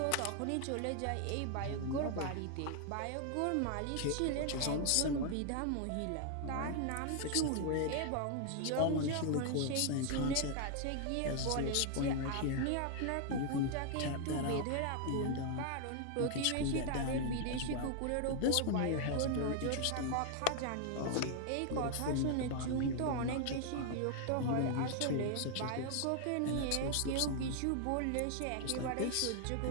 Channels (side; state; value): both; different; correlation 0.00